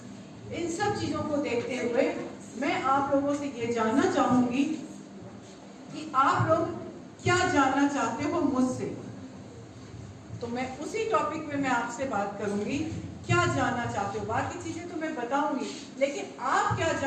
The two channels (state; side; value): identical; both; correlation 1.00